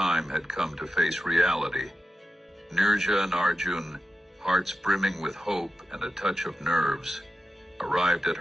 had come to face reality. Nirja and Arjun, hearts brimming with hope and a touch of nerves, arrived at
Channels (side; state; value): both; normal; correlation 0.91